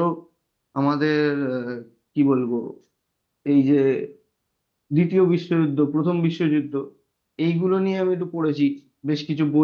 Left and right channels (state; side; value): identical; both; correlation 1.00